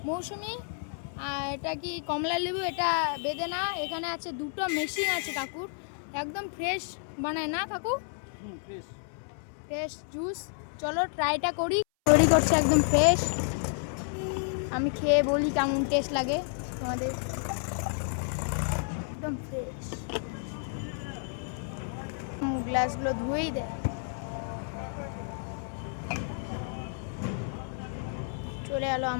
মৌসুমি এটা কি কমলা লেবু, এটা বেদেনা। এখানে আছে দুটো মেশিন আছে কাকুর, একদম ফ্রেশ বানায় না কাকু? Fresh juice. চলো ট্রাইটা করি। তৈরি করছে একদম ফ্রেশ। আমি খেয়ে বলি কেমন টেস্ট লাগে তোমাদের। একদম ফ্রেশ। গ্লাসগুলো ধুয়েই দেয়। চলে এলো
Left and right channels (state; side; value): silent; right; 57 dB below the other